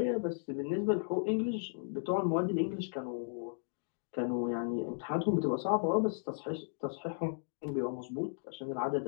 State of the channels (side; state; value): right; silent; digital silence